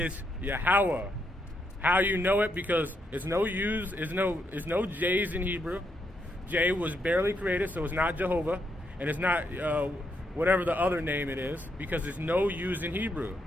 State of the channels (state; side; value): normal; both; correlation 0.78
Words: Yahweh. How you know it? Because it's no J's in Hebrew. J was barely created, so it's not Jehovah, and it's not whatever the other name it is, because it's no U's in Hebrew.